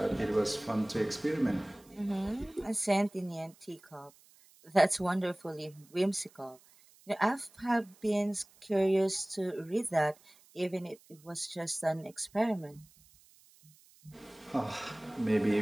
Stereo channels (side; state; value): right; noise; hiss, 27 dB below the sound